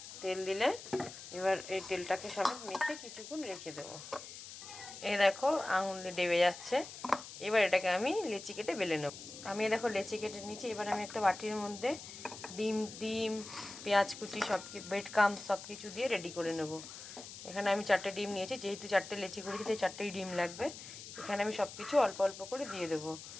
তেল দিলে এবার এই তেলটাকে সমেত মেখে কিছুক্ষণ রেখে দেবো। এই দেখো, আঙুল দিয়ে ডেবে যাচ্ছে। এবার এটাকে আমি লেচি কেটে বেলে নেব। আমি দেখো লেচি কেটে নিয়েছি। এবার আমি একটা বাটির মধ্যে ডিম পেঁয়াজ কুচি ব্রেড ক্রাম্বস সব কিছু দিয়ে রেডি করে নেব। এখানে আমি 4টে ডিম নিয়েছি, যেহেতু 4টে লেচি করেছি তাই 4টেই ডিম লাগবে। এখানে আমি সব কিছু অল্প অল্প করে দিয়ে দেবো।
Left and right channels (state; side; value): noise; left; hiss, 13 dB below the sound